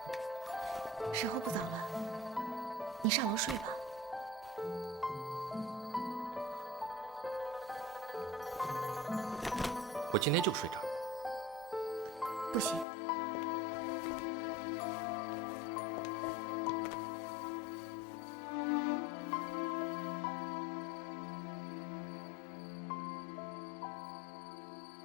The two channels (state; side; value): drops out; right; at 12.9 s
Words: 时候不早了，你上楼睡吧。我今天就睡这儿。不行，你让我走啊？黄梅儿，自从我回来以后，